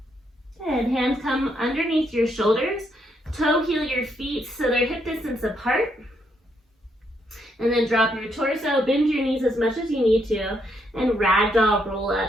Good. Hands come underneath your shoulders. Toe heel your feet so they're hip distance apart. And then drop your torso, bend your knees as much as you need to, and ragdoll roll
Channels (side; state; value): both; normal; correlation 0.76